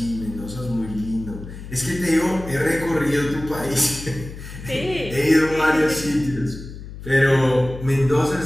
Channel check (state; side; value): noise; left; hum, 12 dB below the sound